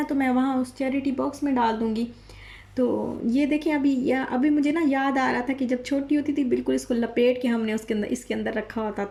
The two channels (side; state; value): both; identical; correlation 1.00